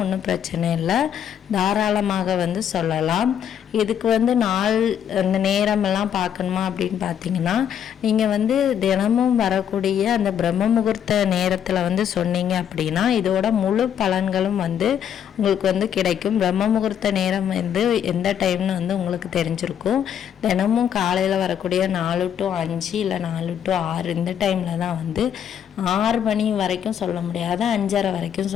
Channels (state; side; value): quieter; right; 9.0 dB